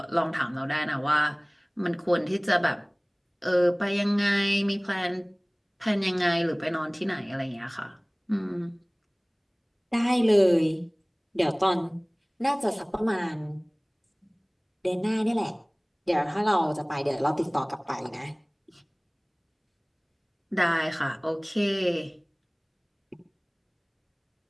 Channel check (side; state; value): both; identical; correlation 1.00